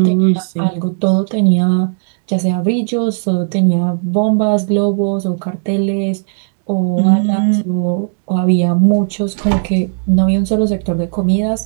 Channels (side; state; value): left; silent; digital silence